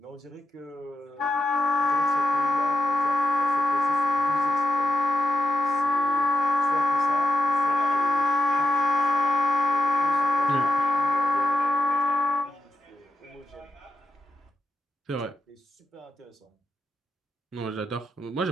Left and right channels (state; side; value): normal; both; correlation 0.87